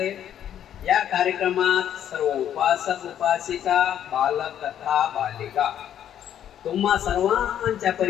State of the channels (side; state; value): right; quieter; 10.2 dB